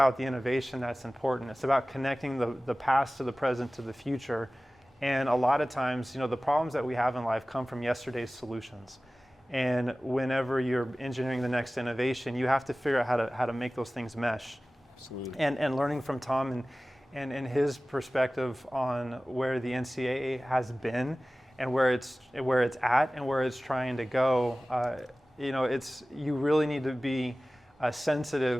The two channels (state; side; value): normal; both; correlation 0.97